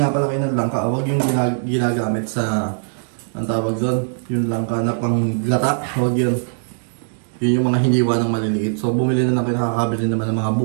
pala kayo ng langka. Huwag yung ginagamit sa, ang tawag doon, yung langka na panggata. Huwag yun. Yun yung mga hiniwa ng maliliit. So, bumili na lang kayo, nakakabili naman ng mga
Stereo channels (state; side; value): silent; left; digital silence